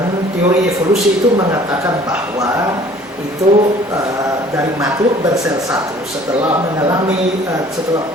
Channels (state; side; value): normal; both; correlation 0.52